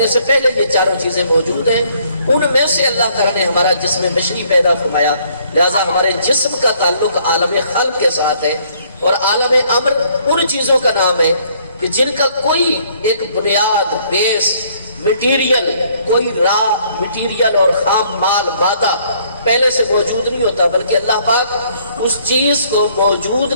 سے پہلے یہ چاروں چیزیں موجود ہیں. ان میں سے اللہ تعالیٰ نے ہمارا جسم بشری پیدا فرمایا. لہذا ہمارے جسم کا تعلق عالم خلق کے ساتھ ہے، اور عالم امر ان چیزوں کا نام ہے کہ جن کا کوئی ایک بنیاد، بیس، مٹیریل، کوئی را مٹیریل اور خام مال، مادہ پہلے سے موجود نہیں ہوتا، بلکہ اللہ پاک اس چیز کو موجود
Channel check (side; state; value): both; inverted; correlation -0.64